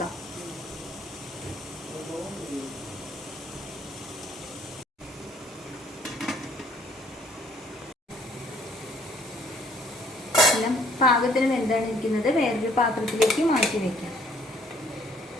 എല്ലാം പാകത്തിന് വെന്താണ് ഇരിക്കുന്നത്. വേറൊരു പാത്രത്തിലേക്ക് മാറ്റി വെക്കാം.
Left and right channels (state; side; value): normal; both; correlation 0.61